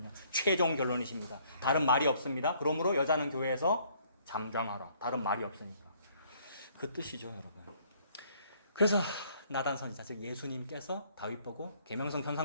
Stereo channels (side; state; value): both; inverted; correlation -0.63